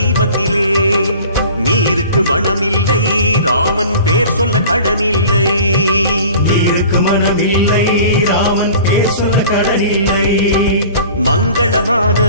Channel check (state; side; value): inverted; both; correlation -0.43